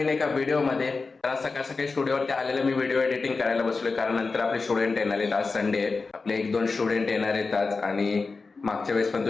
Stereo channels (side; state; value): right; quieter; 4.2 dB